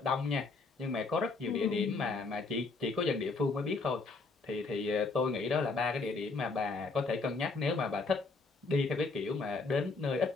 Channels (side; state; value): right; quieter; 4.0 dB